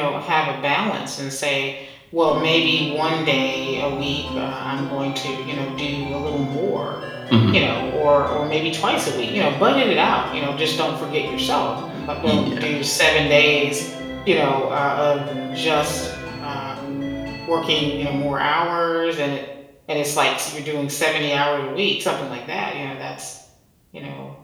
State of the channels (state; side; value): identical; both; correlation 1.00